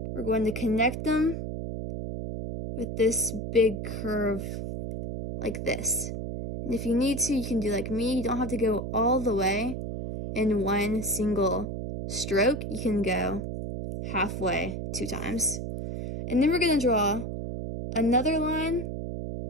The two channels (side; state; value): right; noise; hum, 5 dB below the sound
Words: we're going to connect them with this big curve like this. And if you need to, you can do like me. You don't have to go all the way in one single stroke. You can go halfway 2 times. And then we're going to draw another line,